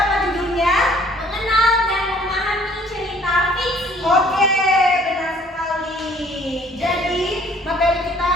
judulnya? Mengenal dan memahami cerita fiksi. Oke, benar sekali. Jadi materi kita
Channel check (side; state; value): both; normal; correlation 0.58